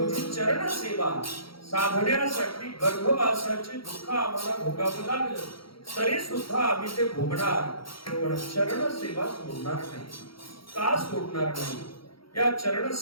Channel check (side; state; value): right; late; 0.74 ms